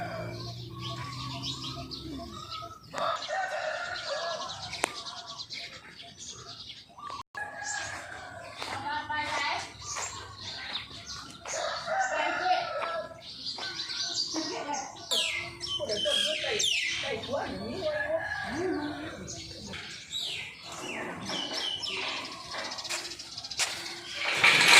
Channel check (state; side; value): identical; both; correlation 1.00